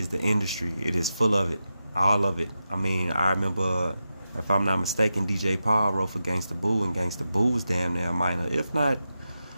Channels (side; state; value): both; inverted; correlation -0.90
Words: the industry. It is full of it. All of it. I mean, I remember, if I'm not mistaken, DJ Paul wrote for Gangsta Boo, and Gangsta Boo was damn near minor, if not